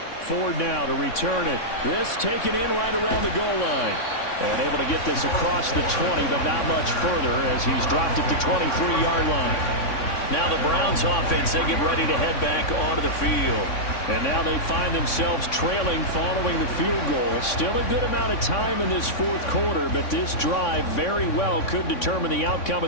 Ford now to return it. This taken in right around the goal line. And able to get this across the 20, but not much further as he's dropped it to 23-yard line. Now the Browns offense, they get ready to head back onto the field. And now they find themselves trailing following the field goal. Still a good amount of time in this 4th quarter, but this drive very well could determine the outcome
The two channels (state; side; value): late; right; 3.6 ms